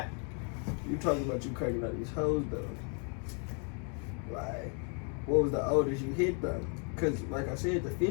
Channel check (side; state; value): right; quieter; 39.8 dB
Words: you talking about you cracking out these hoes though? Like, what was the oldest you hit though? Cause like I said, the